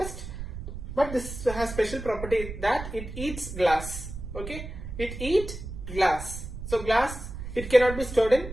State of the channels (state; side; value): noise; right; rumble, 9 dB below the sound